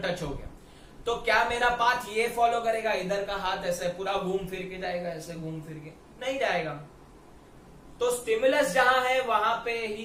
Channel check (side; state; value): both; identical; correlation 1.00